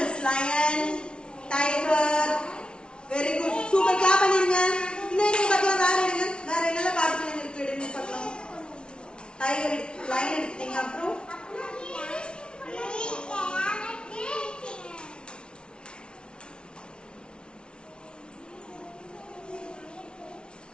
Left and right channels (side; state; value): right; late; 0.056 ms